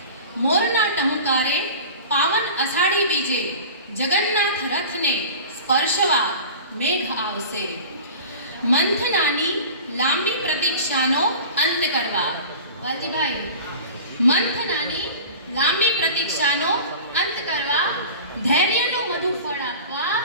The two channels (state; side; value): inverted; both; correlation -0.38